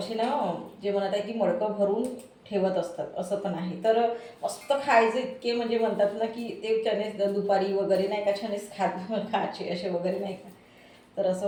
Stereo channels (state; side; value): identical; both; correlation 1.00